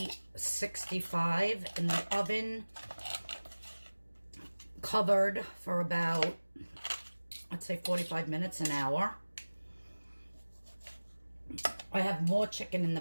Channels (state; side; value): inverted; both; correlation -1.00